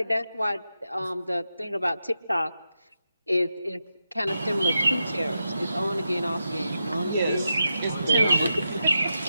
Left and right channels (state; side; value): inverted; both; correlation -0.88